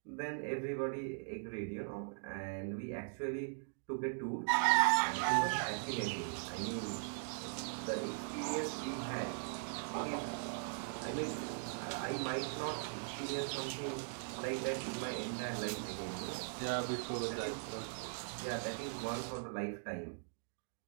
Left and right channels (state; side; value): silent; left; digital silence